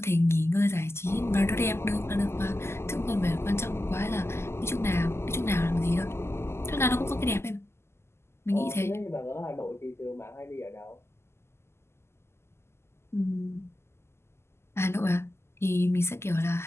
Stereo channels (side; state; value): right; late; 0.12 ms